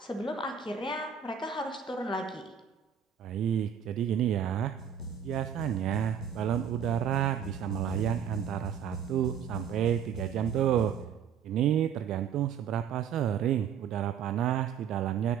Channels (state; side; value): quieter; left; 8.1 dB